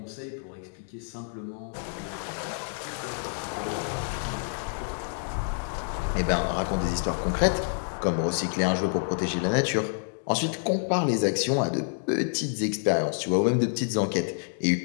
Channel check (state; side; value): silent; right; digital silence